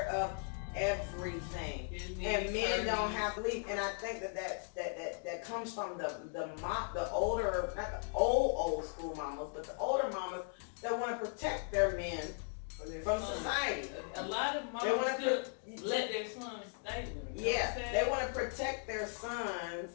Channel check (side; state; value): right; silent; 53 dB below the other